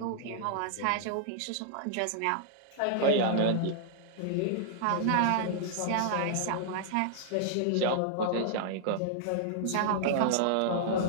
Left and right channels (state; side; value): different; both; correlation -0.01